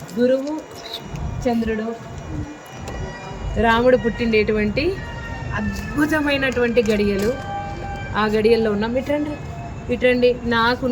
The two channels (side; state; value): both; identical; correlation 1.00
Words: గురువు చంద్రుడు, రాముడు పుట్టిండేటువంటి అద్భుతమైనటువంటి గడియలు. ఆ గడియల్లో ఉన్నాం. ఇట్రండి ఇట్రండి.